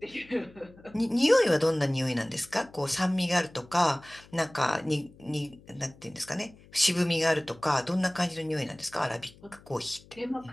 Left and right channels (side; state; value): left; noise; hum, 24 dB below the sound